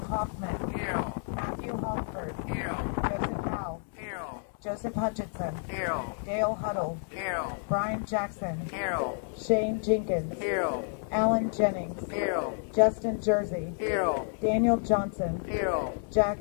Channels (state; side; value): silent; right; 58 dB below the other